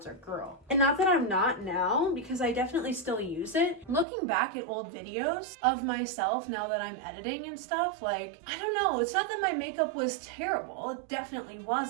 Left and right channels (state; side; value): drops out; left; at 4.0 s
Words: girl. And not that I'm not now, because I definitely still use it. Looking back at old videos of myself now that I'm editing and stuff, like, I don't know, it's not that my makeup was terrible. It definitely